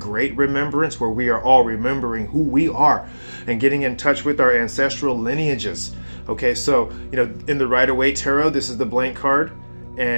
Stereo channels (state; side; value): inverted; both; correlation -1.00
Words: remembrance where we are all remembering who we are and getting in touch with our ancestral lineages. Okay, so, in the Rider-Waite Tarot, this is the blank card,